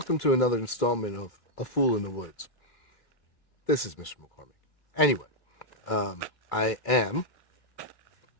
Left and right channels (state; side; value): late; right; 2.3 ms